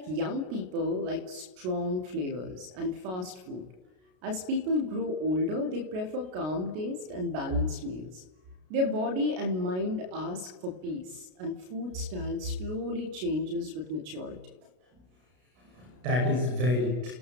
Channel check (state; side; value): late; left; 33 ms